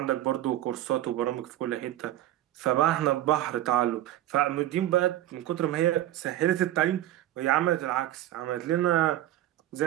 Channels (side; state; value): left; quieter; 13.7 dB